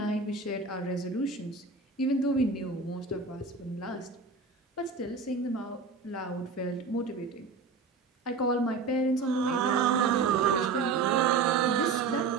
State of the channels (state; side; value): quieter; left; 4.5 dB